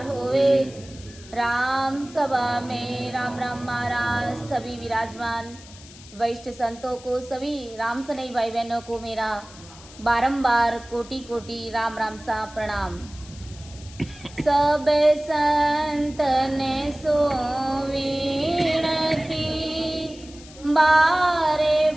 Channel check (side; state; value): left; noise; hiss, 20 dB below the sound